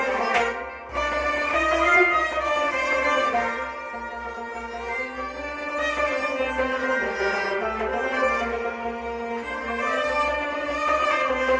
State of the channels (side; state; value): both; identical; correlation 1.00